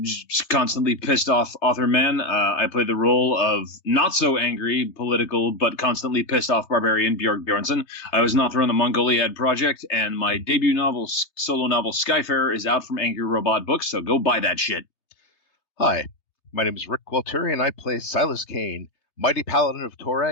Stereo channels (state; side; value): late; right; 3.3 ms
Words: constantly pissed off author man. I play the role of not so angry political but constantly pissed off barbarian Björk Bjornsson. I was an author on the Mongoliad Project, and my debut novel, solo novel Skyfarer, is out from Angry Robot Books. So go buy that shit. Hi, my name is Rick Gualtieri, and I play Silas Kane, mighty paladin of